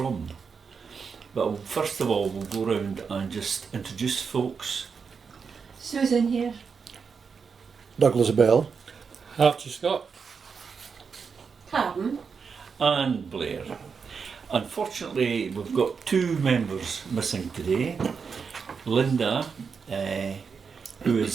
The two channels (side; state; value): left; quieter; 5.7 dB